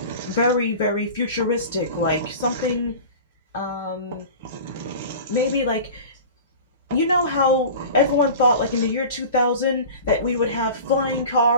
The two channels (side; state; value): both; inverted; correlation -0.36